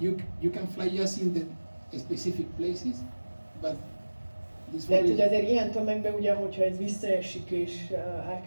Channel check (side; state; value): both; inverted; correlation -1.00